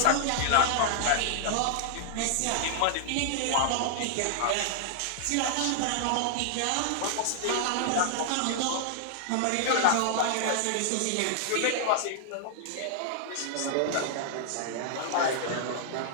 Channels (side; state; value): both; different; correlation -0.01